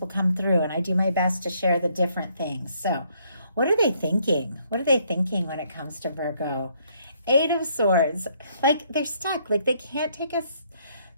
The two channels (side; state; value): both; inverted; correlation -0.69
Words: will come through, and I do my best to share the different things. So what are they thinking? What are they thinking when it comes to Virgo? Eight of Swords. Like they're stuck. Like they can't take a